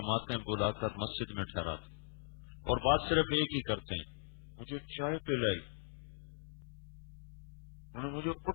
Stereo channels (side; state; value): right; silent; 52 dB below the other